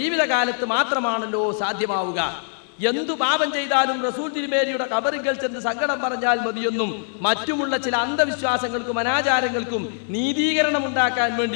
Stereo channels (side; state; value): right; silent; digital silence